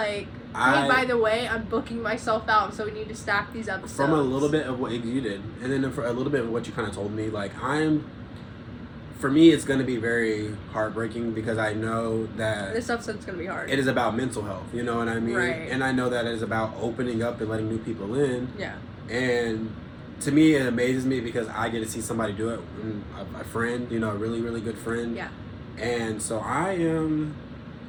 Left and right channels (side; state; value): both; identical; correlation 1.00